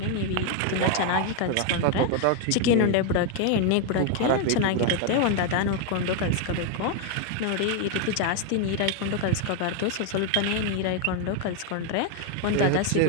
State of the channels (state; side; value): different; both; correlation 0.01